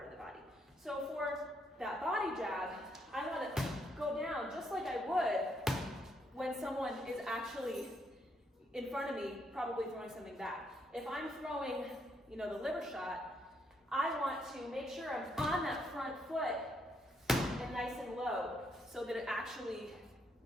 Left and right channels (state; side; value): normal; both; correlation 0.75